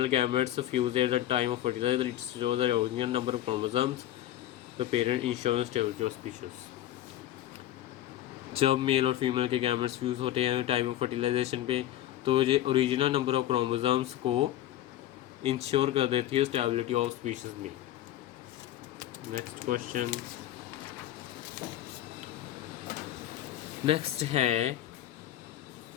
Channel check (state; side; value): quieter; right; 13.1 dB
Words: gametes fuse at the time of fertilization, it shows the original number of chromosomes. The parent ensures stability of species। जब मेल और फीमेल के gametes fuse होते हैं time of fertilization पे, तो ये original number of chromosomes को ensure कर देती है स्टेबिलिटी ऑफ स्पीशीज में। नेक्स्ट क्वेश्चन, नेक्स्ट है